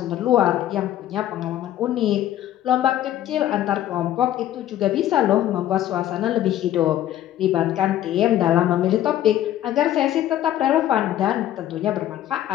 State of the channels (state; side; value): quieter; right; 12.6 dB